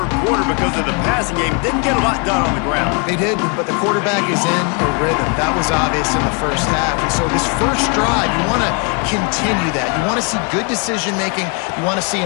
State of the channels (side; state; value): right; quieter; 34.6 dB